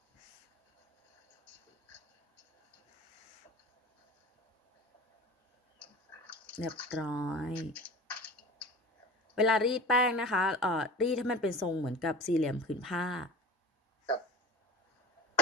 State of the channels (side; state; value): both; normal; correlation 0.36